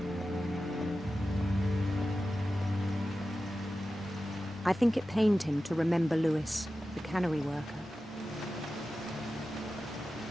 I think it pained him to remember Lewis, the cannery worker.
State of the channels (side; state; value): both; normal; correlation 0.93